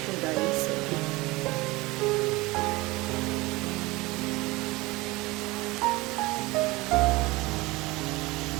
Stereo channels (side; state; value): left; quieter; 21.6 dB